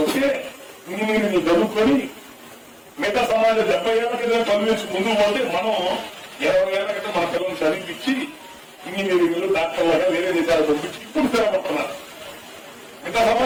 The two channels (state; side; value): identical; both; correlation 1.00